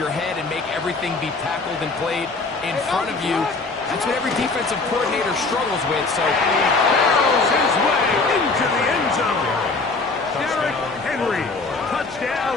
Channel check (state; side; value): quieter; right; 3.8 dB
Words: head and make everything be tackled and played in front of you? That's what every defensive coordinator struggles with. So he barrels his way into the end zone. Derrick Henry,